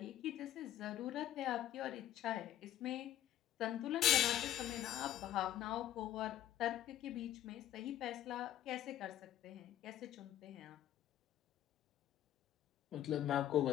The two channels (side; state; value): right; quieter; 12.2 dB